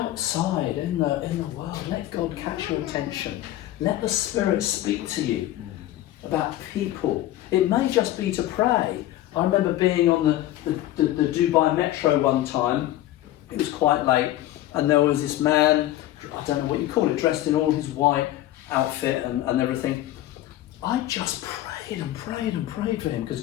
in the world, let God catch your attention. Let the Spirit speak to you about people. It may just be to pray. I remember being on the Dubai metro one time. It was quite late, and there was this man, I don't know what you call it, dressed in all his white outfit and everything. I just prayed and prayed and prayed for him because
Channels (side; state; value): right; quieter; 14.4 dB